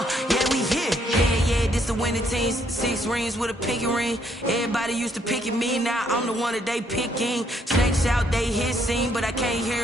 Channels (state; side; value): normal; both; correlation 0.70